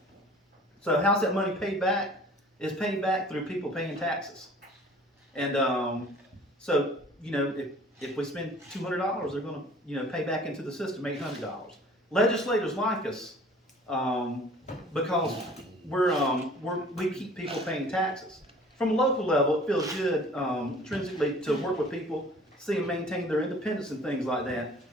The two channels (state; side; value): normal; both; correlation 0.49